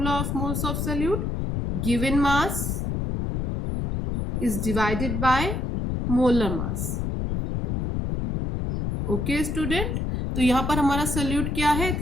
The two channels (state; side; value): noise; left; rumble, 1 dB below the sound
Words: of moles of solute, given mass is divided by molar mass। Okay student, तो यहाँ पर हमारा solute क्या है,